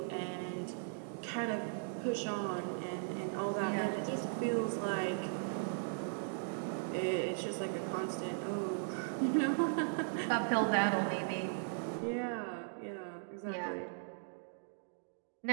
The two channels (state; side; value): silent; left; digital silence